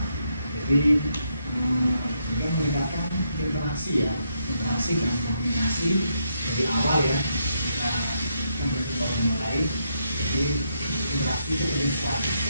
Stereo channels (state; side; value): inverted; both; correlation -0.78